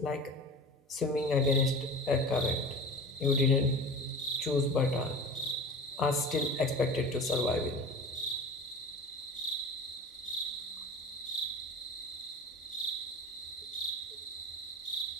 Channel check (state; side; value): normal; both; correlation 0.35